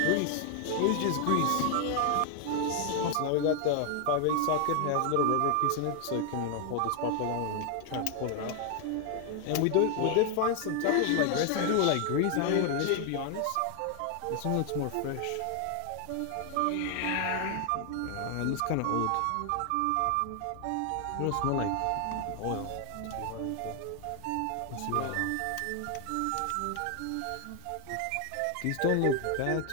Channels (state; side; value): different; both; correlation 0.00